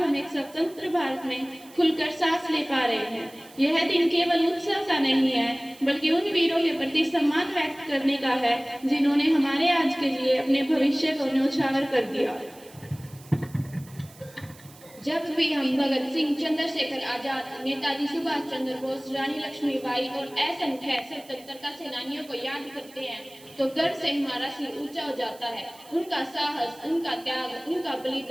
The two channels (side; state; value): right; noise; hiss, 23 dB below the sound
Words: एक स्वतंत्र भारत में खुलकर सांस ले पा रहे हैं। यह दिन केवल उत्सव का नहीं है, बल्कि उन वीरों के प्रति सम्मान व्यक्त करने का है जिन्होंने हमारे आज के लिए अपने भविष्य को न्यौछावर कर दिया। जब भी हम भगत सिंह, चंद्रशेखर आजाद, नेताजी सुभाष चंद्र बोस, रानी लक्ष्मीबाई और असंख्य स्वतंत्रता सेनानियों को याद करते हैं तो गर्व से हमारा सिर ऊंचा हो जाता है। उनका साहस, उनका त्याग, उनका